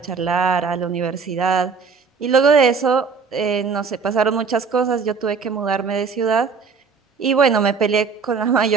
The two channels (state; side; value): quieter; left; 5.3 dB